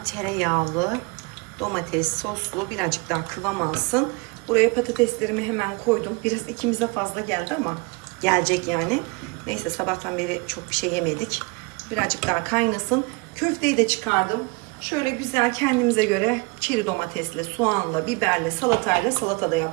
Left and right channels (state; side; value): quieter; left; 28.5 dB